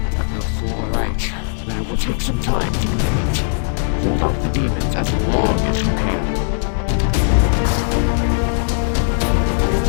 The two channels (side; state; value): right; silent; digital silence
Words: All right, but it will take some time to complete. Hold off the demons as long as you can.